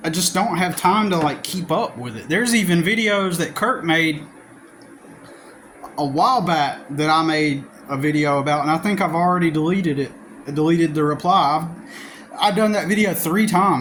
I just don't have time to like keep up with it. There's even videos that Kurt made a while back that I made a video about, and I think I've already deleted it. I deleted the reply. I've done that video 3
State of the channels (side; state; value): both; identical; correlation 1.00